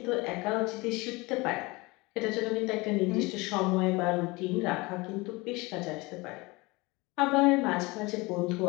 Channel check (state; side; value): quieter; right; 23.9 dB